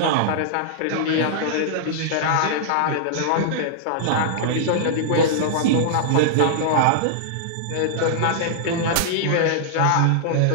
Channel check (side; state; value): both; different; correlation -0.01